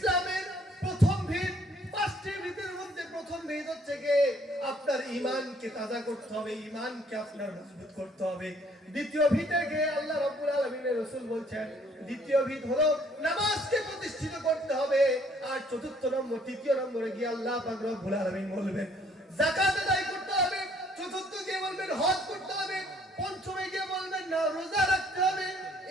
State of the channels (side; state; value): both; normal; correlation 0.62